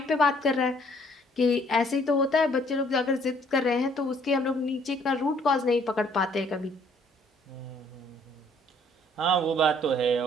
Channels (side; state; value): both; normal; correlation 0.62